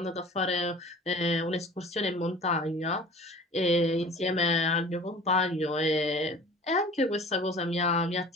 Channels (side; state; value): both; normal; correlation 0.44